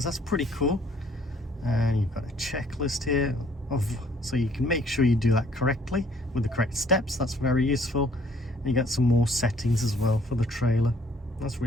That's pretty cool. And you've got a checklist here so you can make sure you do that correctly with the correct steps. That's very useful. And you got some more settings as well for the trailer. That's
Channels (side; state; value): both; normal; correlation 0.61